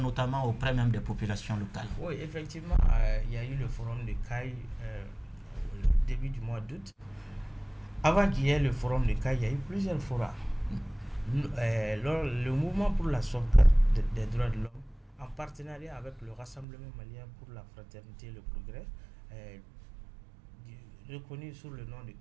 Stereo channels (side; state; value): left; drops out; at 16.7 s